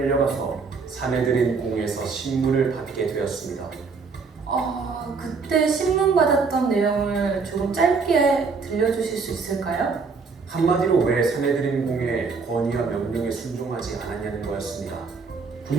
사내들인 공에서 신문을 받게 되었습니다. 그때 신문 받았던 내용을 조금 짧게 들려주실 수 있을까요? 한마디로 왜 사내들인 공의 권위와 명령에 순종하지 않았냐는 거였습니다.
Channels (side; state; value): left; quieter; 4.8 dB